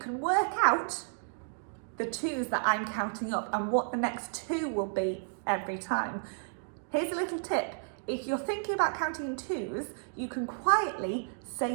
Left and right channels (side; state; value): left; silent; digital silence